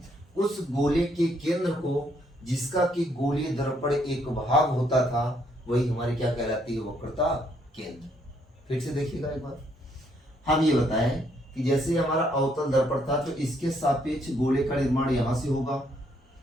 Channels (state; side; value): normal; both; correlation 0.71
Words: उस गोले के केंद्र को जिसका कि गोलीय दर्पण एक भाग होता था वही हमारी क्या कहलाती है, वक्रता केंद्र। फिर से देखिएगा एक बार, हम ये बताएं कि जैसे हमारा अवतल दर्पण था तो इसके सापेक्ष गोले का निर्माण यहां से होगा।